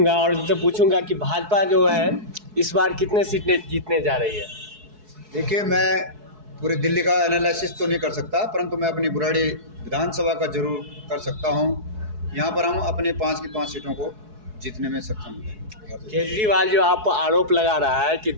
और उनसे पूछूंगा कि भाजपा जो है इस बार कितने सीटें जीतने जा रही है। देखिए, मैं पूरी दिल्ली का एनालिसिस तो नहीं कर सकता, परंतु मैं अपनी बुराड़ी विधानसभा का जरूर कर सकता हूं। यहां पर हम अपने 5 की 5 सीटों को जीतने में सक्षम हैं। केजरीवाल जो आप आरोप लगा रहा है कि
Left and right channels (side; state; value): left; late; 4.7 ms